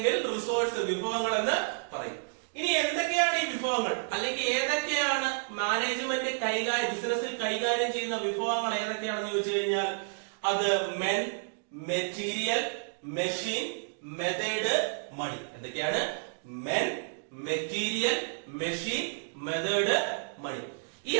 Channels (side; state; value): left; silent; digital silence